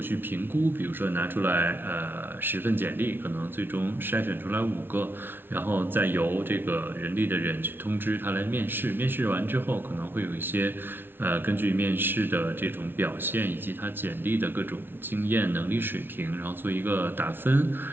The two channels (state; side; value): late; left; 0.10 ms